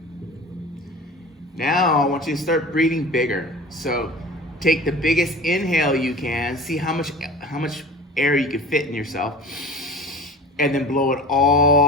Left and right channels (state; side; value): normal; both; correlation 0.38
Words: Now I want you to start breathing bigger. So take the biggest inhale you can, see how much air you can fit in yourself, and then blow it